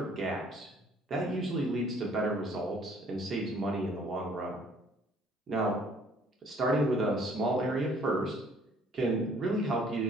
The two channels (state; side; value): normal; both; correlation 0.59